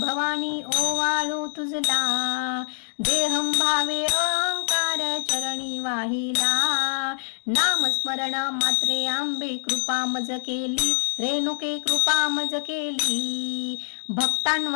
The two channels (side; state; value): right; silent; 62 dB below the other